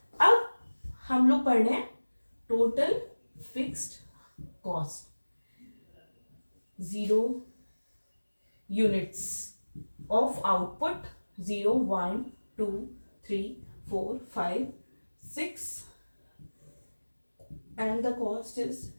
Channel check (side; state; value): both; inverted; correlation -1.00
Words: अब हम लोग पढ़ रहे हैं total fixed cost, 0 units of output, 0 1 2 3 4 5 6 and the cost is